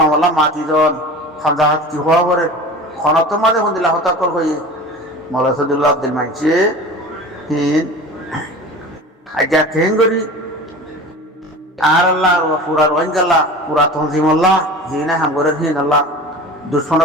মাতি জন খামজা হাত কি হওয়া পরে খনত মাঝে হন্দিলা হতাকল হয়ে মৌলা সদুল্লাহ আব্দুল মানছে হিন আজ্ঞা কেন করি আর আল্লাহ পুরা রোহিঙ্গাল্লা পুরা তঞ্জিমল্লাহ হিনা হাঙ্গরের হিন আল্লাহ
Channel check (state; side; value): normal; both; correlation 0.36